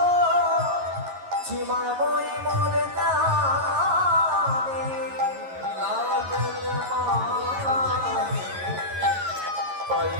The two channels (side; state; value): left; late; 11 ms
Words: সীমায় মই মরে জানি লাগল মায়ে পাই